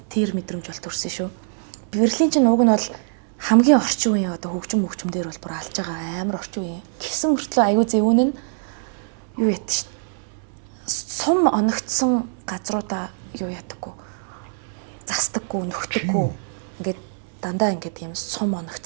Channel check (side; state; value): left; silent; 63 dB below the other